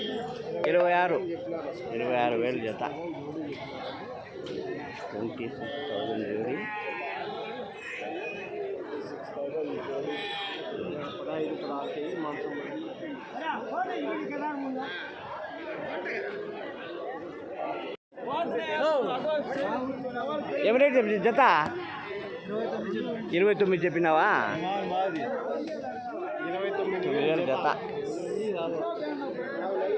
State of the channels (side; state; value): both; identical; correlation 1.00